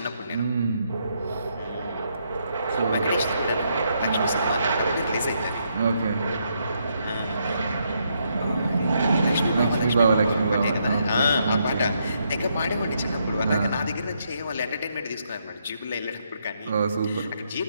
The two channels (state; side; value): inverted; both; correlation -0.77